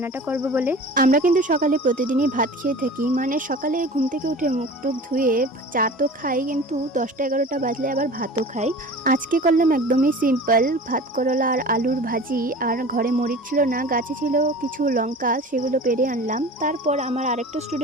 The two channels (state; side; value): normal; both; correlation 0.39